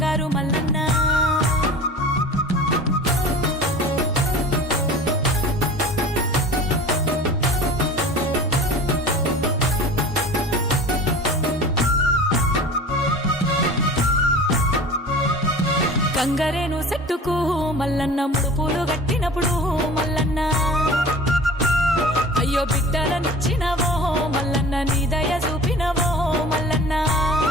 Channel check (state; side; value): normal; both; correlation 0.40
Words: మల్లన్న గంగరేను చెట్టుకు మల్లన్న ముడుపులు గట్టినప్పుడు మల్లన్న అయ్యో బిడ్డలనిచ్చినవో మల్లన్న నీ దయ చూపినవో మల్లన్న